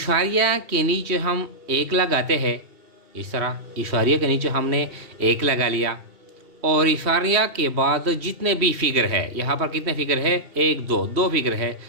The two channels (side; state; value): left; late; 3.1 ms